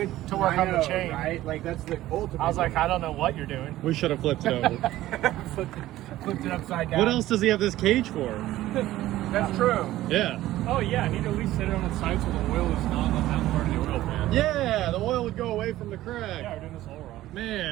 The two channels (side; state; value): left; quieter; 15.2 dB